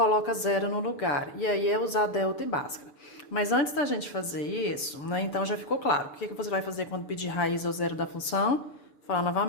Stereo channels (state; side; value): late; right; 6.9 ms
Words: zero no lugar. E aí é usar delta e Bhaskara. Mas antes da gente fazer isso, né, então já ficou claro. O que você vai fazer quando pedir raiz ou zero da função? Vou falar